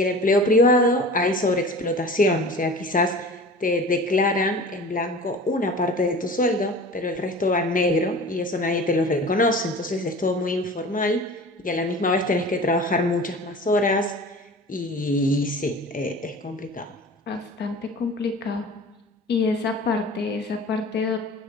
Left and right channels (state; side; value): normal; both; correlation 0.39